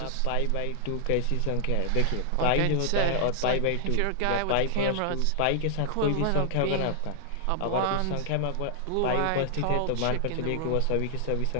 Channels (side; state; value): both; different; correlation -0.01